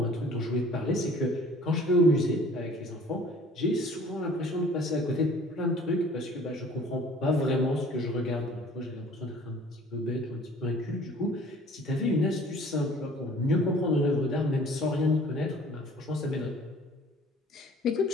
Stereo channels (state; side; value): normal; both; correlation 0.51